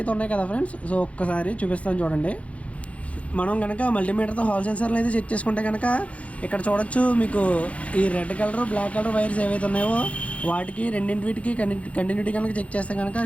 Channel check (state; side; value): late; right; 0.064 ms